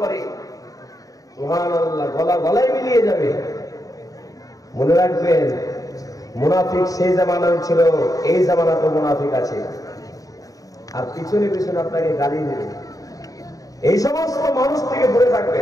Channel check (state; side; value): late; right; 0.17 ms